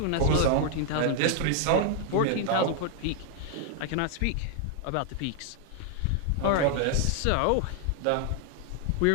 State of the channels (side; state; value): both; different; correlation 0.00